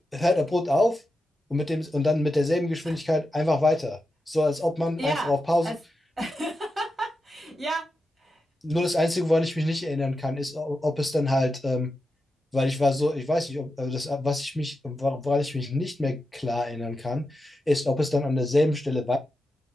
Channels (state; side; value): normal; both; correlation 0.89